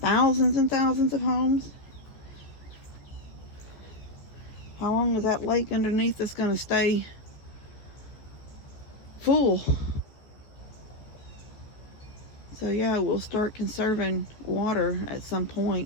and thousands of homes. How long is that lake underneath us going to stay full? So yeah, we'll start conserving water at some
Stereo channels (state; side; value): late; right; 14 ms